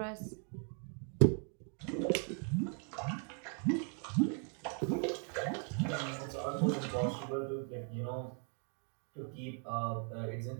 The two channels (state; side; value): quieter; left; 39.2 dB